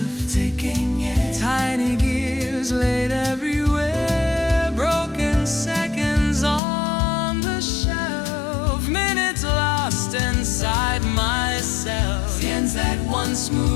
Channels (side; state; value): right; drops out; at 6.6 s